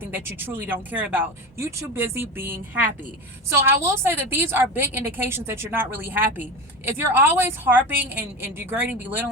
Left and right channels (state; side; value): normal; both; correlation 0.25